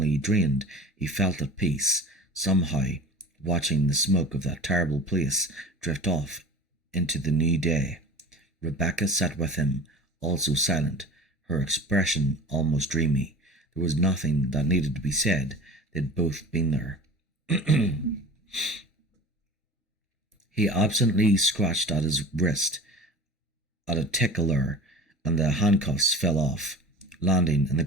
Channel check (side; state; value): both; normal; correlation 0.36